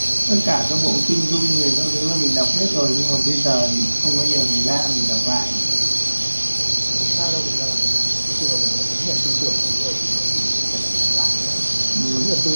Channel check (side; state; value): both; inverted; correlation -1.00